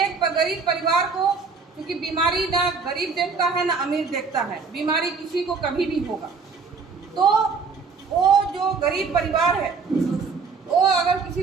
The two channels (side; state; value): left; quieter; 5.0 dB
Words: गरीब परिवार को, क्योंकि बीमारी ना गरीब देखता है ना अमीर देखता है, बीमारी किसी को कभी भी होगा। तो वो जो गरीब परिवार है, वो अगर